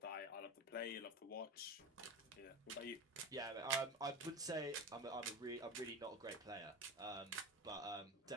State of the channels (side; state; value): both; normal; correlation 0.25